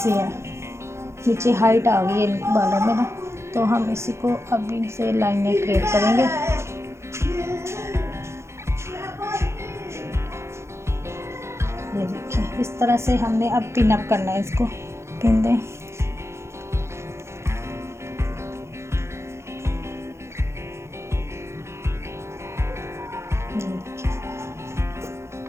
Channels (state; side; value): late; left; 0.13 ms